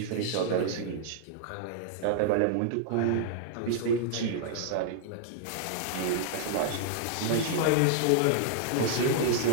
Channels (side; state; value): both; different; correlation -0.01